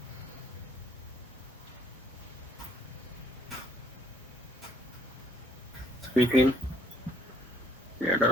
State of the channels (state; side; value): normal; both; correlation 0.63